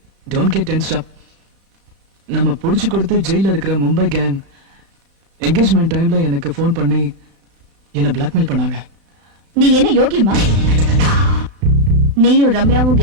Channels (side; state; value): left; late; 31 ms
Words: டோன்ட் கெட் டென்ஸ்ட் அப். நம்ம புடிச்சு கொடுத்து ஜெயில இருக்கிற மும்பை கேங் என்கேஜ்மெண்ட் டைம்ல எனக்கு ஃபோன் பண்ணி என்ன பிளாக்மெயில் பண்ணாங்க. நீ என்ன யோகியமா? நீயும் ரம்யாவும்